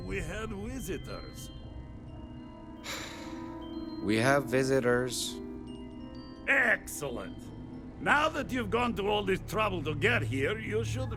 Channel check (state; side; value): identical; both; correlation 1.00